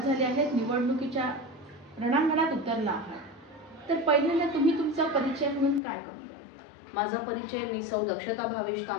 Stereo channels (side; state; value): right; drops out; at 5.8 s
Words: झाली आहे, निवडणुकीच्या रणांगणात उतरला आहात। तर पहिल्यांदा तुम्ही तुमचा परिचय म्हणून काय करू? माझा परिचय, मी सौ दक्षता भावेश